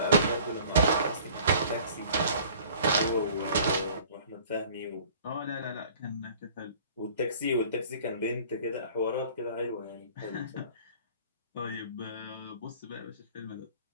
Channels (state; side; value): inverted; both; correlation -0.49